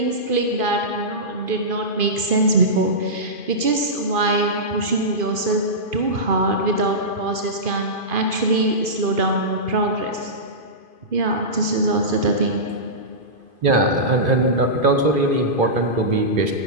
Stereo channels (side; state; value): left; late; 2.5 ms